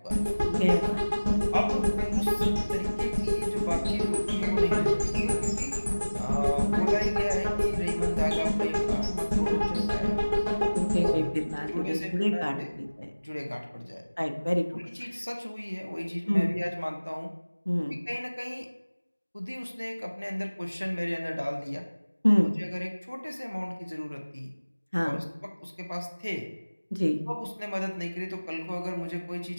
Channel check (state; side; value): inverted; both; correlation -1.00